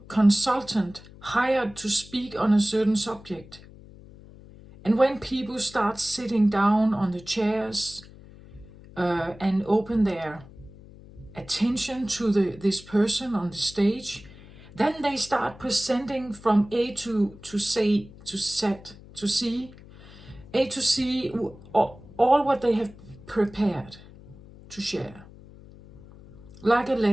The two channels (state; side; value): noise; left; hum, 20 dB below the sound